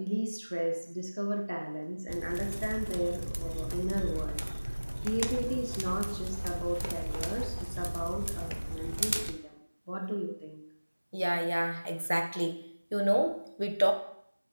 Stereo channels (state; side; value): inverted; both; correlation -1.00